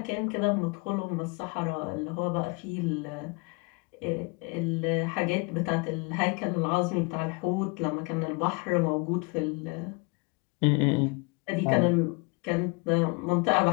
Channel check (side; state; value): right; quieter; 30.0 dB